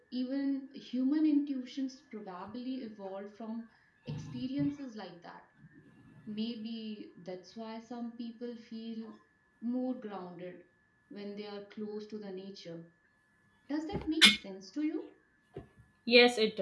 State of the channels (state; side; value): identical; both; correlation 1.00